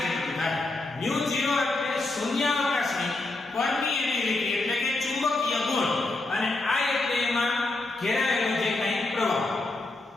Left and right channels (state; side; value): quieter; right; 3.0 dB